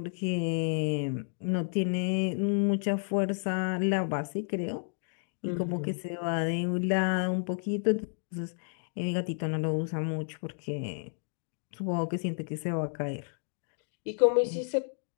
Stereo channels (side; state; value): right; silent; digital silence